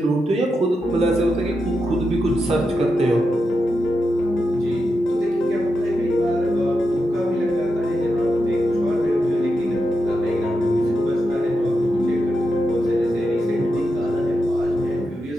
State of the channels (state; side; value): normal; both; correlation 0.87